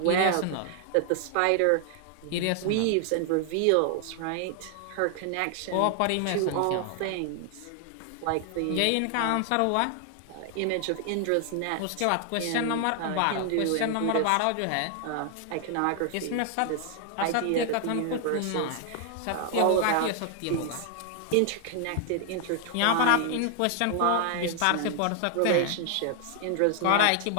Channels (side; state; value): both; different; correlation 0.00